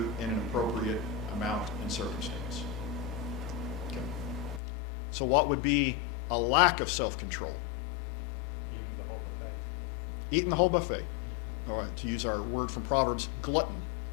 in an appropriate amount and circumstance? Okay. So what would be a lack of self-control? Eating the whole buffet. Eating the whole buffet. All right, to use our word from Proverbs, glutton,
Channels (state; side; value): drops out; right; at 4.6 s